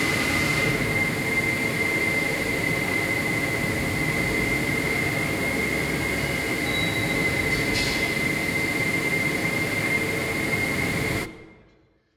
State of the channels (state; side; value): identical; both; correlation 1.00